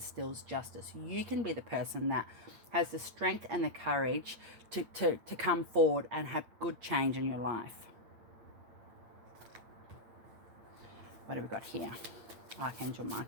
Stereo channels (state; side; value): late; left; 8.6 ms